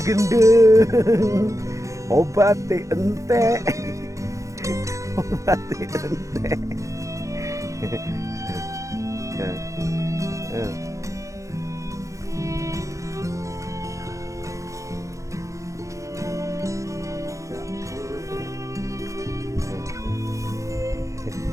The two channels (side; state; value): left; late; 0.15 ms